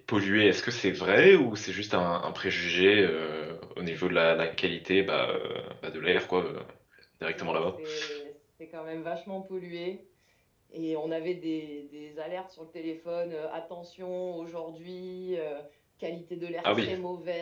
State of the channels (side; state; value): both; identical; correlation 1.00